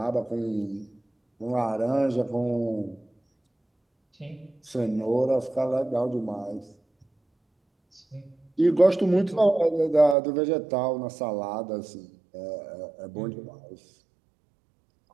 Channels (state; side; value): drops out; left; at 10.2 s